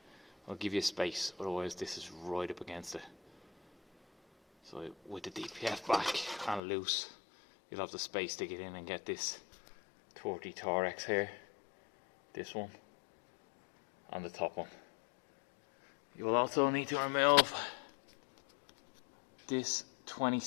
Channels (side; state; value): right; drops out; at 6.6 s